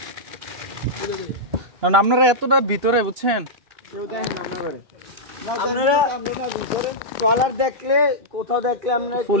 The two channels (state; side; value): late; left; 2.9 ms